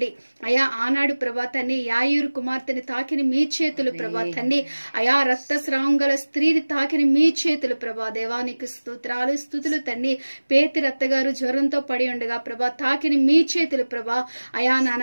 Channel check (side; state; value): both; inverted; correlation -1.00